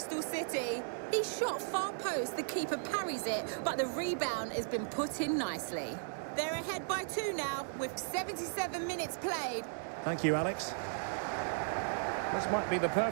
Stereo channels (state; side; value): silent; left; digital silence